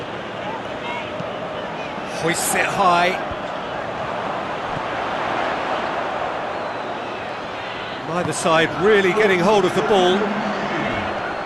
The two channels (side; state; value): both; identical; correlation 1.00